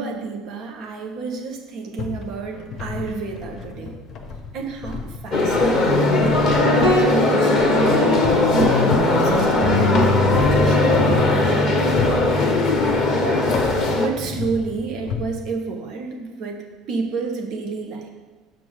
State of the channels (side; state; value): both; normal; correlation 0.48